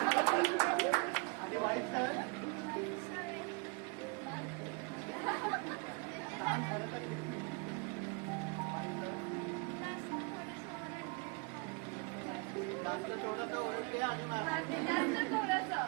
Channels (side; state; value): left; quieter; 31.4 dB